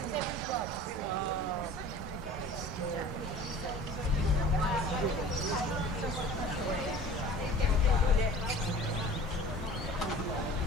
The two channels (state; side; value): normal; both; correlation 0.43